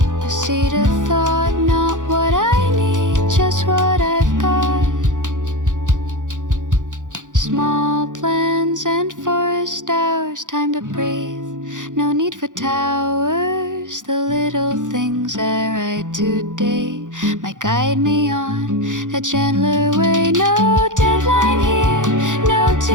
a seed of thought, not what I need, just what I've got. Small plans and forest hours, time to breathe, no need for towers. The little things I write today might guide me on a gentler way. No deadline here, no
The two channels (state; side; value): late; left; 0.87 ms